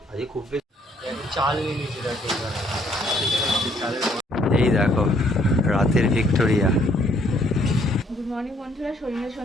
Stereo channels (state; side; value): normal; both; correlation 0.65